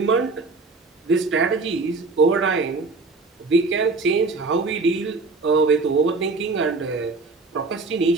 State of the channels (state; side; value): quieter; left; 3.8 dB